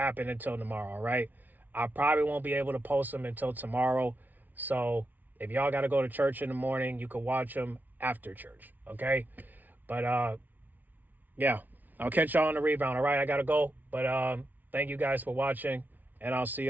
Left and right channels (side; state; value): left; late; 0.082 ms